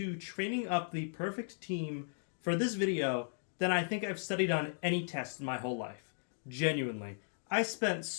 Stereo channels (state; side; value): silent; right; digital silence